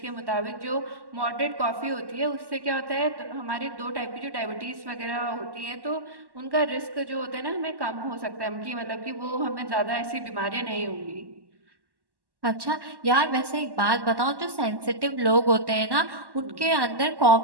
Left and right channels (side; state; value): left; late; 1.1 ms